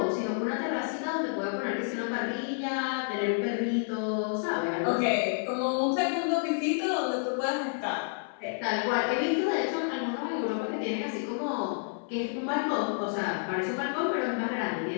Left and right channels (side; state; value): right; silent; 58 dB below the other